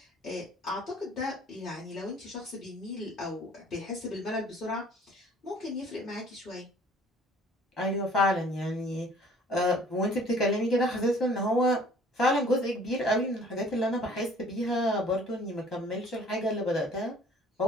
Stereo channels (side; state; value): both; normal; correlation 0.53